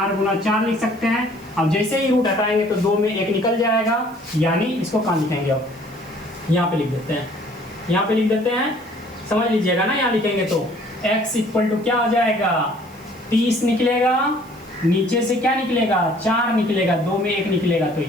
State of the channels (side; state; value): right; noise; hiss, 26 dB below the sound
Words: गुना 4 लिख सकते हैं। अब जैसे ही रूट हटाएंगे तो 2 में 1 निकल जाएगा, यानी इसको कहाँ लिखेंगे, अब यहाँ पे लिख देते हैं, यहाँ पे लिख देते हैं, समझ लीजिएगा ना। यहाँ लिखेंगे तो x इक्वल टू क्या हो जाएगा 30 निकलेगा, नीचे से क्या निकलेगा 4 निकलेगा, 2 में 1 निकलेगा, तो